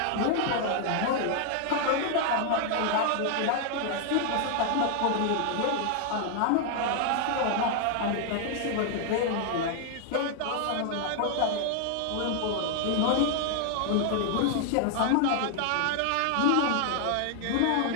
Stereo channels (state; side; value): different; both; correlation 0.00